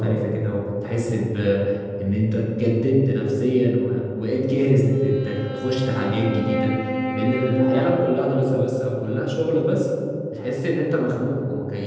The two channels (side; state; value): both; identical; correlation 1.00